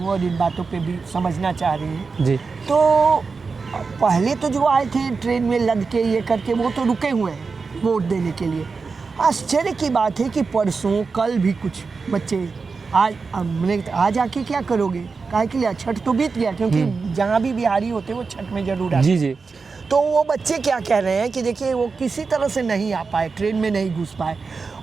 और इन बातों पे भी समझना चाह रही हूँ। तो पहले तो जो आए थे ट्रेन में लद के ये करके, वो तो रुके हुए हैं वोट देने के लिए। आश्चर्य की बात है कि परसों कल भी कुछ बच्चे आज आके क्या करोगे, काहे के लिए? छठ तो बीत गया, क्योंकि जहाँ भी बिहारी होते वो छठ में जरूर आते। जी। तो वो बच्चे क्या कह रहे हैं कि देखिए, वो किसी तरह से नहीं आ पाए, ट्रेन में नहीं घुस पाए,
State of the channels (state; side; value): quieter; left; 4.7 dB